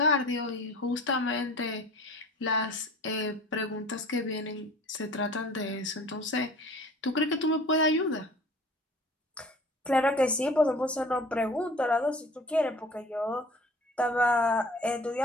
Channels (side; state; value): both; normal; correlation 0.45